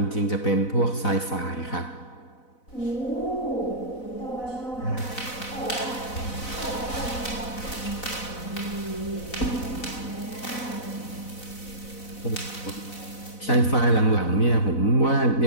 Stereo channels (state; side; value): late; right; 4.0 ms